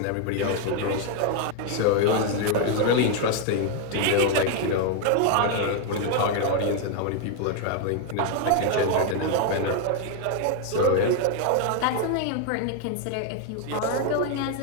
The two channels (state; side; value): different; both; correlation 0.01